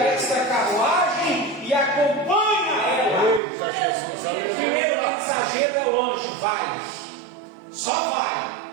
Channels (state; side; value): drops out; left; at 3.4 s